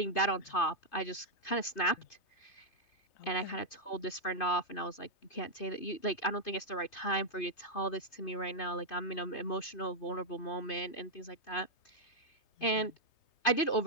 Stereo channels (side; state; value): right; late; 2.5 ms